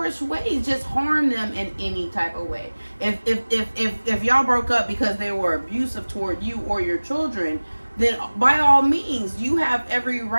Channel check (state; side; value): inverted; both; correlation -1.00